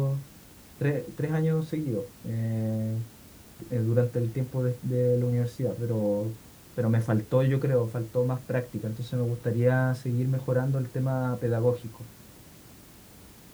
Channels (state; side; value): identical; both; correlation 1.00